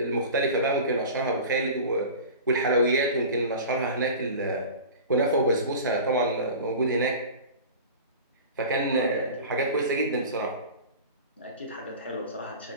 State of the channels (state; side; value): inverted; both; correlation -0.35